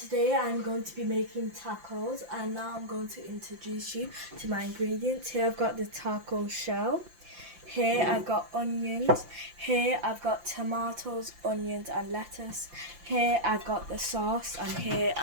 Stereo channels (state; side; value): late; left; 5.8 ms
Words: I'm going to be making tacos, and now I'm going to introduce you to my ingredients. Here I've got the taco shell. Here I've got onions. Here I've got tomatoes, onions and lettuce. Here I've got the sauce, and here